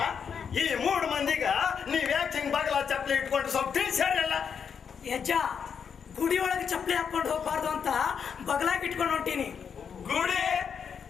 ಈ 3 ಮಂದಿಗ ನೀವ್ ಯಾಕೆ ಹಿಂಗ್ ಬಾಗಲ ಚಪ್ಪಲಿ ಇಟ್ಕೊಂಡು ಸ್ವಲ್ಪ ತಿಳಿಸ್ಯಾರಲ್ಲ ಯಜ್ಜ ಗುಡಿ ಒಳಗೆ ಚಪ್ಪಲಿ ಹಾಕೊಂಡು ಹೋಗ್ಬಾರ್ದು ಅಂತ ಬಗಲಾಗಿ ಇಟ್ಕೊಂಡು ಹೊಂಟೀನಿ.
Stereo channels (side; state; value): right; quieter; 6.9 dB